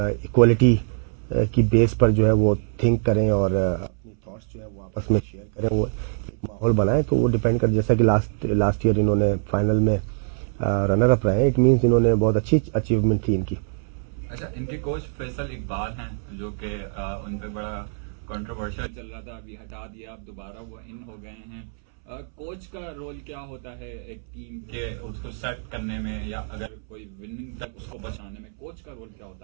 इक्वलिटी की बेस पर जो है वो थिंक करें और अपनी थॉट्स जो है वो आपस में शेयर करें, वो एक माहौल बनाएं। तो वो डिपेंड कर, जैसा कि लास्ट ईयर इन्होंने फाइनल में रनर अप रहे, इट मीन्स इन्होंने बहुत अच्छी अचीवमेंट थी इनकी। अच्छा, इनके कोच फैसल इकबाल हैं जो कि उन पे बड़ा कंट्रोवर्शियल चल रहा था, अभी हटा दिया, अब दोबारा वो इन हो गए हैं। कोच का रोल क्या होता है एक टीम के उसको सेट करने में, या अगर कोई विनिंग तक उसको पहुंचाने में कोच का रोल क्या होता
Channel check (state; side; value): silent; left; 62 dB below the other